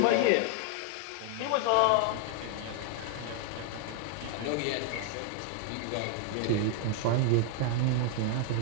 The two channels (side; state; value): both; different; correlation 0.00